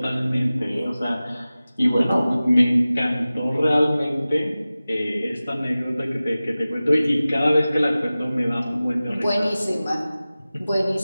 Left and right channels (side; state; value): both; inverted; correlation -0.97